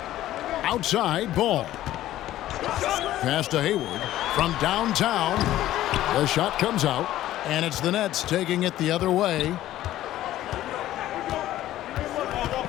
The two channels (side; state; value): right; quieter; 14.0 dB